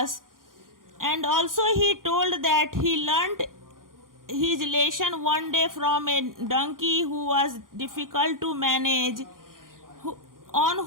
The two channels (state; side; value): late; left; 0.90 ms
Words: and also he told that he learned his lesson one day from a donkey who was difficult to manage, on